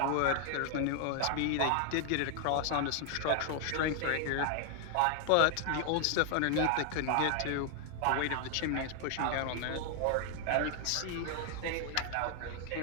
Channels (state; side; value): different; both; correlation 0.00